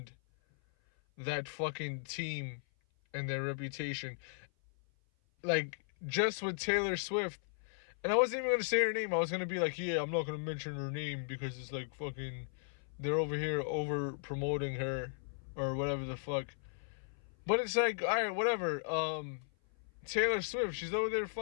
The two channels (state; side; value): silent; right; 53 dB below the other